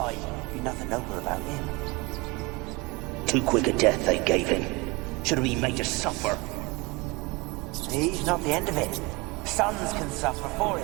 Be nothing noble about him. Too quick a death they gave him. Should have been made to suffer. He's not the end of it. Sons can suffer for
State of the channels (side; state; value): left; quieter; 25.5 dB